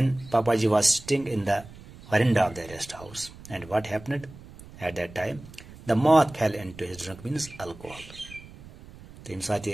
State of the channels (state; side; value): noise; right; rumble, 19 dB below the sound